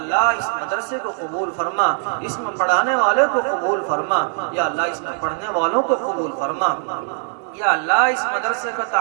اس مدرسے کو قبول فرما. اس میں پڑھانے والے کو قبول فرما. یا اللہ اس میں پڑھنے والوں کو قبول فرما. یا اللہ اس مدرسے کا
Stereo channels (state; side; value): silent; left; 57 dB below the other